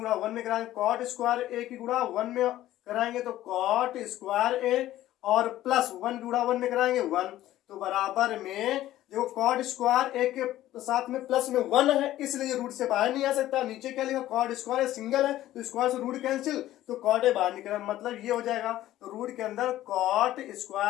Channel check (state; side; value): quieter; right; 14.2 dB